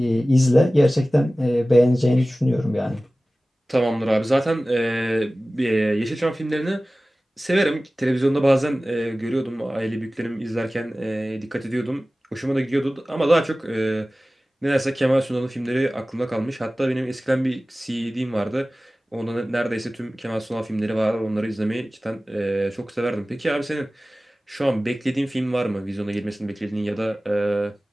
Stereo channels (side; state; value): both; normal; correlation 0.97